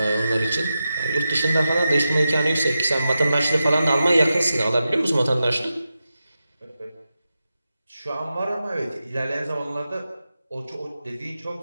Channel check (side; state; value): both; inverted; correlation -0.91